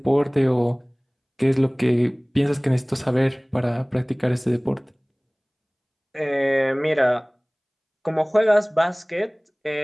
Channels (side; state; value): both; identical; correlation 1.00